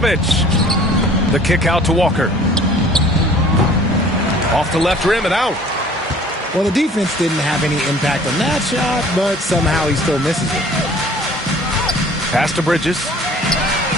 The kick out to Walker. Off the left rim and out. Well, the defense didn't have any impact on that shot, but somehow he still misses it. Pass to Bridges.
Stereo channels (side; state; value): both; normal; correlation 0.51